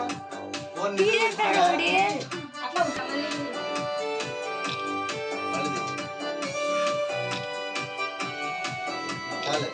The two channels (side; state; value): both; identical; correlation 1.00